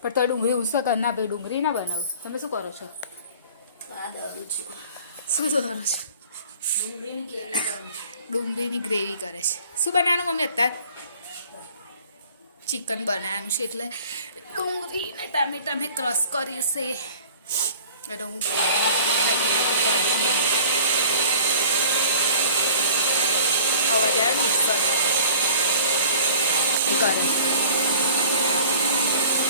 પણ તો ડુંગળી ઉસો કર ના ભાઈ, ડુંગળી ના બનાવું. તમે શું કરો છો? શું કરો છો? ડુંગળીની ગ્રેવી કરે છે. શું બનાવવાનું મમ્મી અત્યારે? ચિકન બનાવવાનું છે એટલે ડુંગળી ને ટામેટા મેં ક્રશ કરી છે. એટલે હું અવાજ આવે મિક્સર એ કરે.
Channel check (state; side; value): inverted; both; correlation -0.47